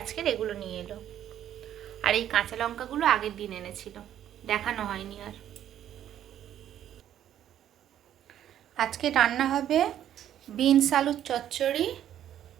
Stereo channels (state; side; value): quieter; left; 11.0 dB